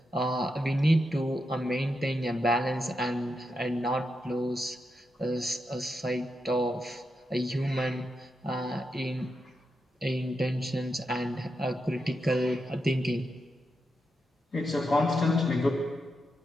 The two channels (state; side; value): normal; both; correlation 0.85